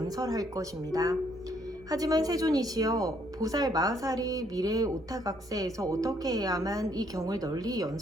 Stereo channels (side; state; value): right; noise; hum, 22 dB below the sound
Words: 것입니다. 하지만 세존이시여, 보살 마하살이 미래 오타각세에서 어떻게 해야만 이 경을 널리